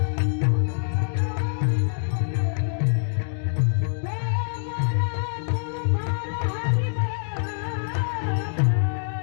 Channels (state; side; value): silent; right; digital silence